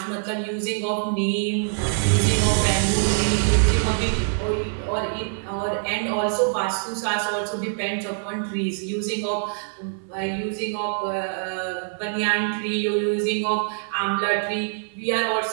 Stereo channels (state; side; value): silent; left; 61 dB below the other